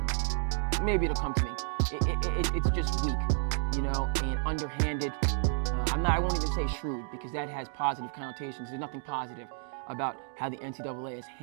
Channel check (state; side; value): silent; left; digital silence